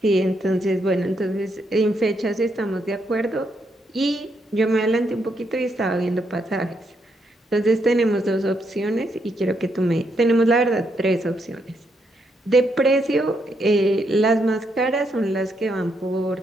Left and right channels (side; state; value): both; normal; correlation 0.78